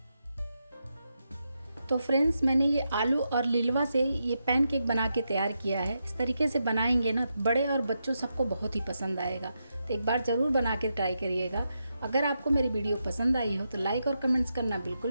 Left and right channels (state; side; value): inverted; both; correlation -0.85